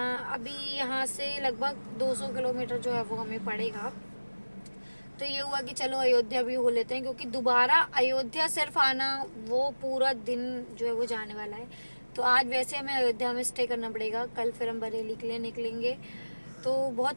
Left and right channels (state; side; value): inverted; both; correlation -1.00